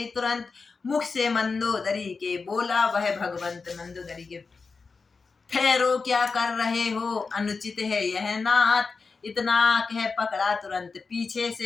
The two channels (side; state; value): right; quieter; 4.6 dB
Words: तुरंत, मुख से मंदोदरी के बोला वह भगवंत। मंदोदरी के ठहरो क्या कर रहे हो, अनुचित है यह नाथ, इतना कह पकड़ा तुरंत पीछे